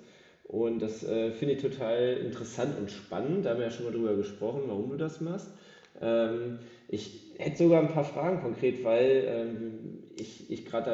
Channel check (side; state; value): both; identical; correlation 1.00